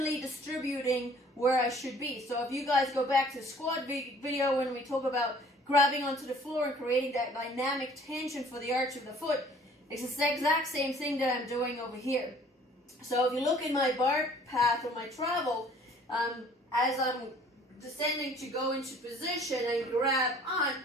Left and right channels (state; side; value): normal; both; correlation 0.54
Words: distributing where I should be. So if you guys go back to the squat video when we talk about grabbing onto the floor and creating that dynamic tension for the arch of the foot, it's the exact same thing that I'm doing over here. So if you look in my bar path or my travel, as I'm descending to go into position and grab on,